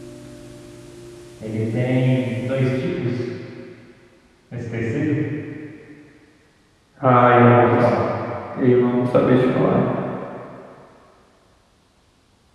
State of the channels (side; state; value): both; identical; correlation 1.00